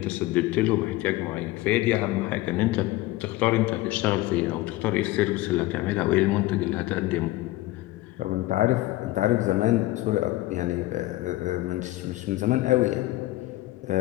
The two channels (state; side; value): quieter; right; 17.7 dB